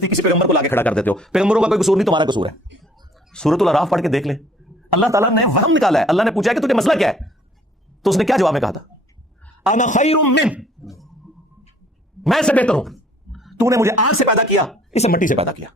کسی پیغمبر کو لا کے کھڑا کر دیتے ہو۔ پیغمبروں کا کوئی قصور نہیں، تمہارا قصور ہے۔ سورۃ الاعراف پڑھ کے دیکھ لیں، اللہ تعالیٰ نے وہم نکالا ہے. اللہ نے پوچھا کہ تجھے مسئلہ کیا ہے, تو اس نے کیا جواب میں کہا تھا؟ انا خیر من, میں سے بہتر ہوں. تو نے مجھے آگ سے پیدا کیا, اسے مٹی سے پیدا کیا.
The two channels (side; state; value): both; normal; correlation 0.58